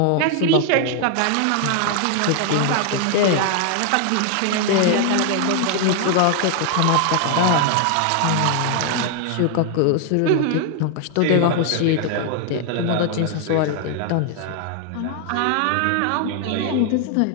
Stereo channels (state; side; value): different; both; correlation 0.00